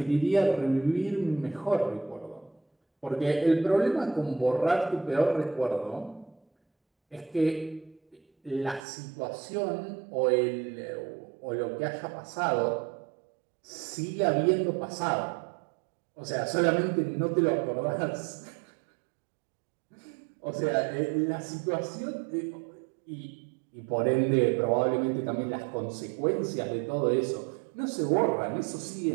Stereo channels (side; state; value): left; drops out; at 8.8 s